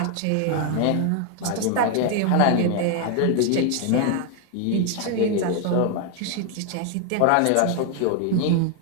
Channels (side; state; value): both; different; correlation 0.00